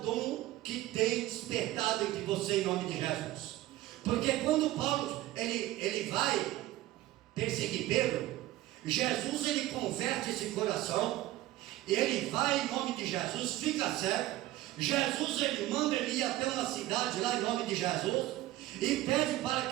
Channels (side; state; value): left; quieter; 15.8 dB